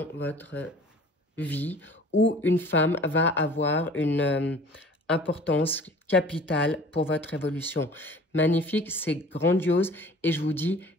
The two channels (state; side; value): normal; both; correlation 0.46